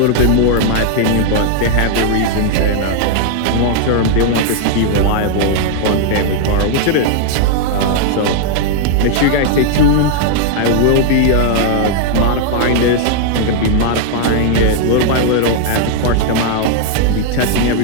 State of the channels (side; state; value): both; different; correlation 0.00